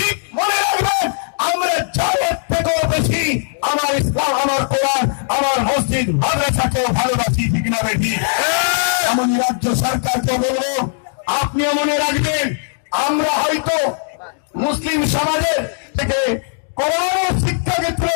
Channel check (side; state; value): right; silent; digital silence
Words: মনে রাখবেন, আমরা জানের থেকেও বেশি আমার ইসলাম, আমার কোরআন, আমার মসজিদ মাদ্রাসাকেও ভালোবাসি। ঠিক না বেশি? এমনই রাজ্য সরকারকে বলবো, আপনিও মনে রাখবেন, আমরা হয়তো মুসলিম সমাজের থেকে কোরআনের শিক্ষাকে